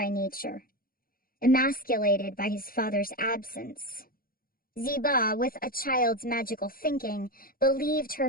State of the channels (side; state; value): right; late; 0.42 ms